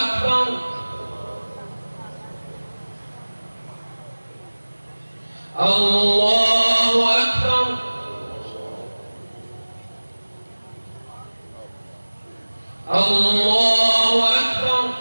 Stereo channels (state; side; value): inverted; both; correlation -1.00